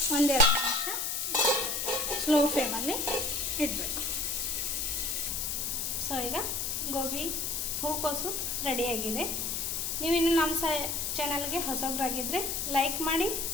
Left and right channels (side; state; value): left; noise; hiss, 1 dB below the sound